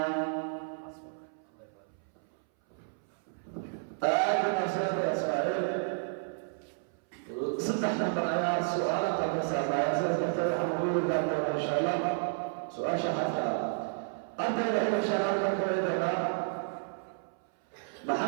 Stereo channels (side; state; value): left; silent; 57 dB below the other